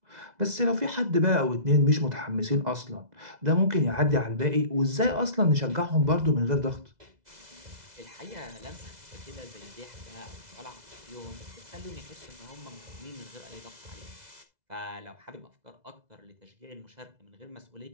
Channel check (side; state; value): left; late; 2.0 ms